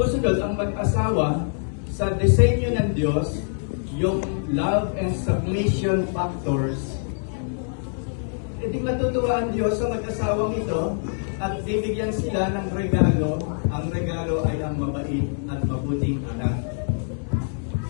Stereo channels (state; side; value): silent; right; digital silence